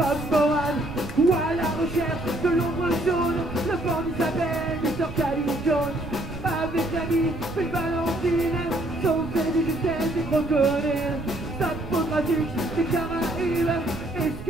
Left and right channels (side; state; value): right; noise; rumble, 11 dB below the sound